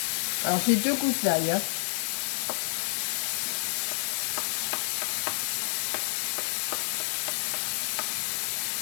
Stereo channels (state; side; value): silent; right; digital silence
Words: Alors j'ai 2 gousses d'ail. Hein.